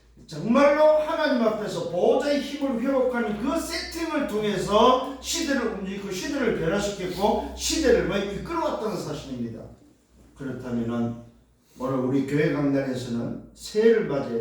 정말로 하나님 앞에서 보호자의 힘을 회복하는 그 세팅을 통해서 시대를 움직이고 시대를 변화시켰고 시대를 이끌어왔다는 사실입니다. 그렇다면 오늘 우리 교회 강단에서는 새해를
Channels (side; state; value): both; identical; correlation 1.00